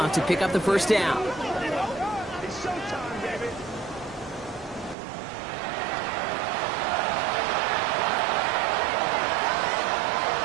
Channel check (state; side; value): drops out; left; at 5.0 s